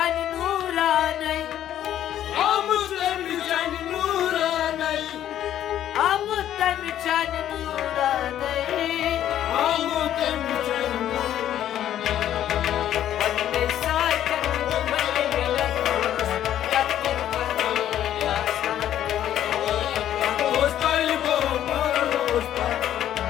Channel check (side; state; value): right; quieter; 11.4 dB